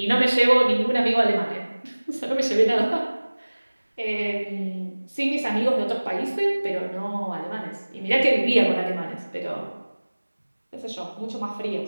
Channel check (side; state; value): both; inverted; correlation -1.00